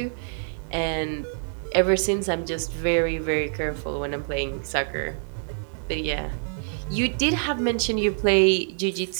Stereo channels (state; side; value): silent; left; digital silence